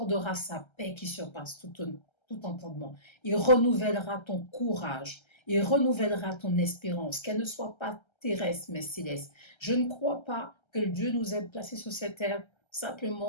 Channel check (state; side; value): late; right; 1.3 ms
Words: sa paix qui surpasse tout entendement. Il renouvellera ton courage. Il renouvellera ton espérance. Qu'elle ne soit pas terrestre mais céleste. Je ne crois pas que Dieu nous ait placés sur cette terre